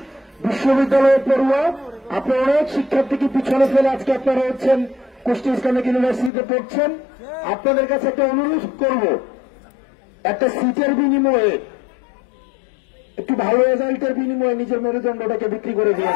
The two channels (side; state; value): right; drops out; at 6.3 s